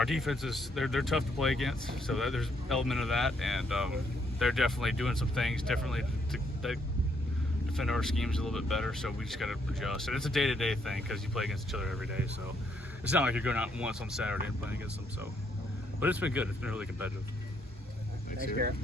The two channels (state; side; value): normal; both; correlation 0.72